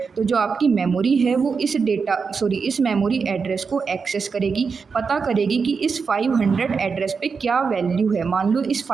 तो जो आपकी मेमोरी है वो इस मेमोरी एड्रेस को एक्सेस करेगी, पता करेगी कि इस 500 एड्रेस पे क्या वैल्यू है। मान लो इस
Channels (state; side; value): quieter; left; 5.3 dB